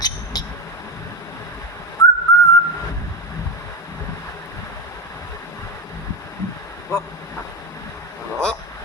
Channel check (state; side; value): normal; both; correlation 0.17